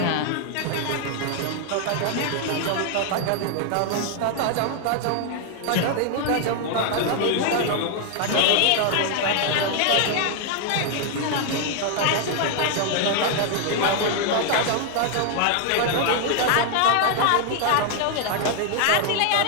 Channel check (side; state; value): both; different; correlation 0.00